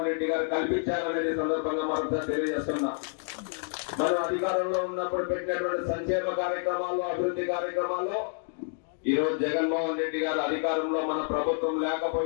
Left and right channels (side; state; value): right; silent; 59 dB below the other